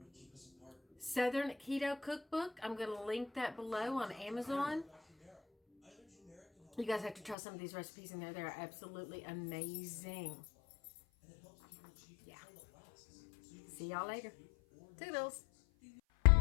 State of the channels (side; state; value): right; drops out; at 7.4 s